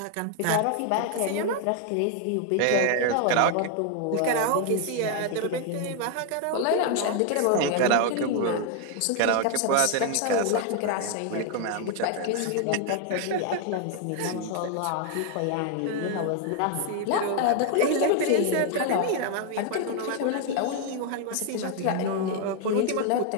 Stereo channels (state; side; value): different; both; correlation 0.00